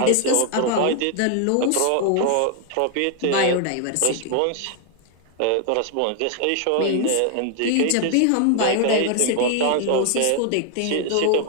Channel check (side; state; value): both; different; correlation 0.00